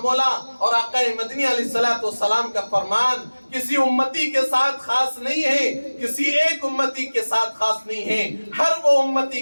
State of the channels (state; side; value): inverted; both; correlation -1.00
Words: اور آقا مدنی علیہ السلام کا فرمان کسی امتی کے ساتھ خاص نہیں ہے، کسی ایک امتی کے ساتھ خاص نہیں ہے، ہر وہ امتی